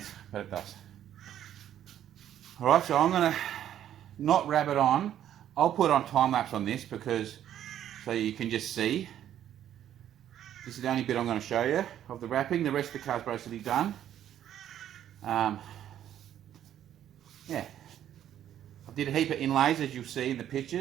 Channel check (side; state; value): left; quieter; 10.9 dB